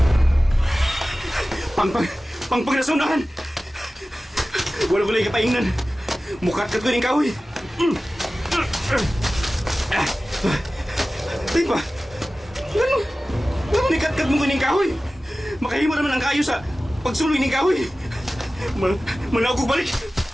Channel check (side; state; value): both; normal; correlation 0.96